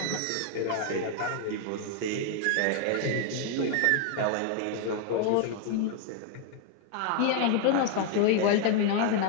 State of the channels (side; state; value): both; different; correlation 0.00